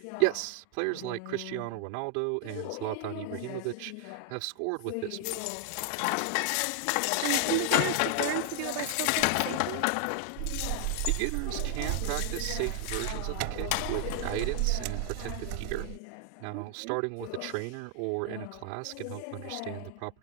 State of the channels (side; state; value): both; different; correlation 0.00